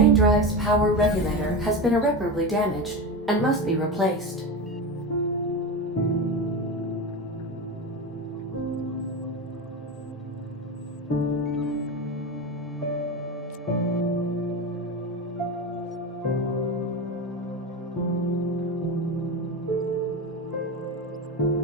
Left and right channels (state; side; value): normal; both; correlation 0.21